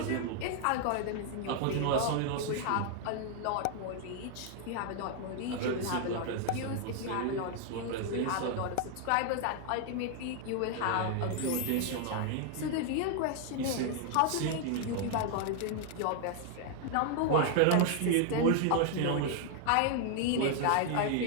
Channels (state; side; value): different; both; correlation 0.00